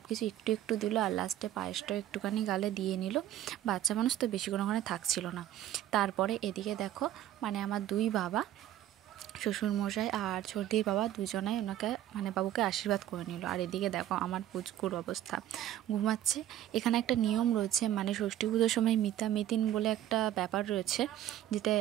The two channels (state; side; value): quieter; left; 12.5 dB